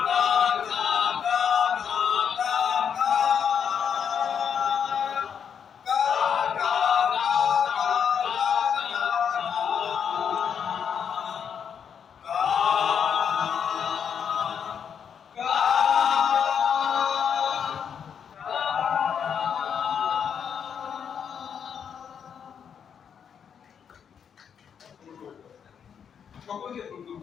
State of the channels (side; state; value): right; quieter; 7.6 dB